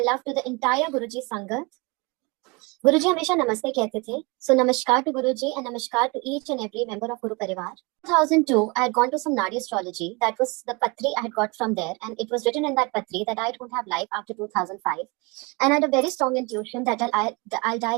love to the entire Guru ji संगत। गुरु जी हमेशा नमस्ते कहते थे, सो namaskar to Guru ji and namaskar to each and every member of Guru Parivar. 2002, I had gone to some Nadi astrology. That was the patri I had got from there, and it was written in that patri that I don't have life after 2005. And I had a very strong intuition that I'll die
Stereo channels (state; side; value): quieter; left; 27.7 dB